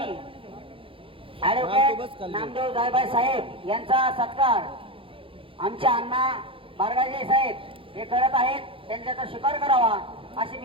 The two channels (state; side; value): late; left; 0.26 ms